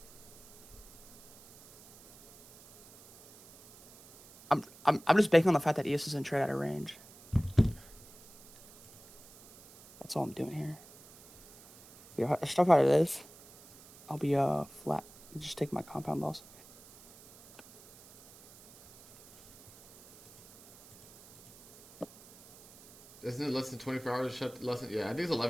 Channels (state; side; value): noise; right; hiss, 22 dB below the sound